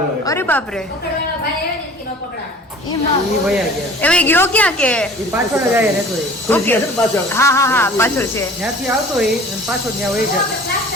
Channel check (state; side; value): normal; both; correlation 0.45